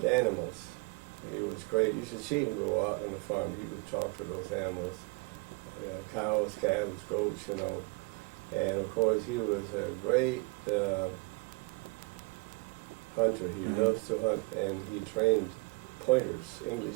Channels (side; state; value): left; quieter; 29.6 dB